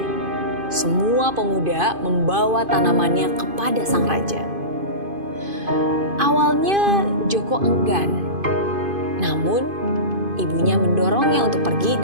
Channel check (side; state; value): left; late; 2.5 ms